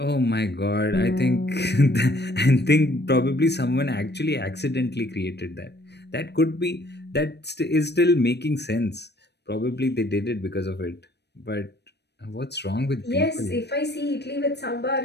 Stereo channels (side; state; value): right; late; 0.49 ms